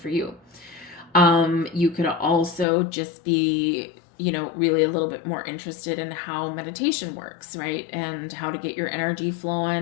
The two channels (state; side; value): drops out; right; at 2.7 s